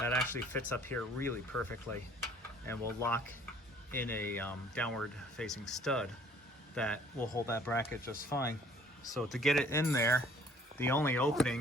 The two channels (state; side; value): normal; both; correlation 0.56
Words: actually fits up here really perfectly and will lock in a downward facing stud that will hold that bracket just fine. So to get it in there, the only